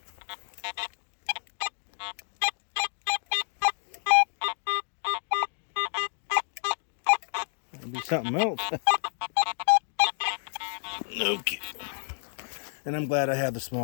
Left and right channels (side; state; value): right; silent; digital silence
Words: Be something else. Okay. And I'm glad I have the